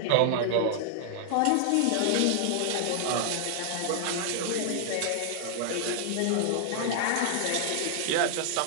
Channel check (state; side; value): different; both; correlation 0.00